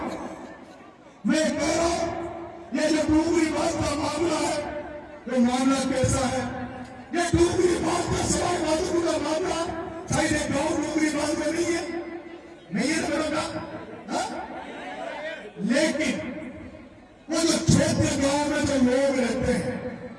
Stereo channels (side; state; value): both; identical; correlation 1.00